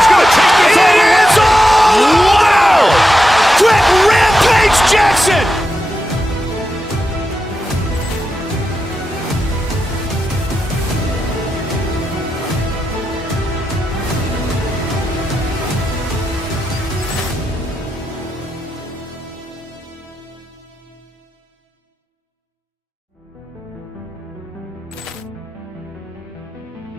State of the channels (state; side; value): normal; both; correlation 0.88